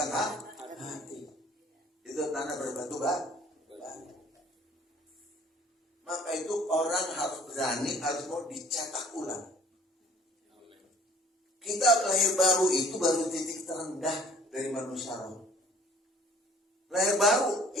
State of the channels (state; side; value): normal; both; correlation 0.54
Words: hati. Itu tanah berbatu batu. Maka itu orang harus berani, harus mau dicetak ulang. Kita lahir baru itu baru titik terendah dari manusia roh. Lahir baru